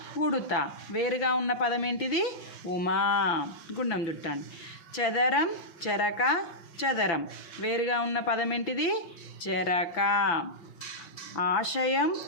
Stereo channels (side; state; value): right; late; 5.9 ms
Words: ఉడుత. వేరుగా ఉన్న పదం ఏంటిది? ఉమా. గుండం చుట్టండి. చదరం, చెరక, చదరం. వేరుగా ఉన్న పదం ఏంటిది? చెరక. ఆశయం,